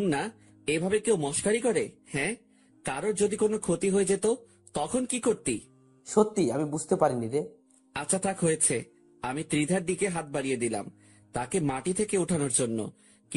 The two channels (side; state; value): both; identical; correlation 1.00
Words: এভাবে কেউ মস্কারি করে? হ্যাঁ, কারোর যদি কোনো ক্ষতি হয়ে যেত তখন কি করতি? সত্যি আমি বুঝতে পারিনি রে। আচ্ছা থাক, হয়েছে। আমি ত্রিধার দিকে হাত বাড়িয়ে দিলাম তাকে মাটি থেকে ওঠানোর জন্য,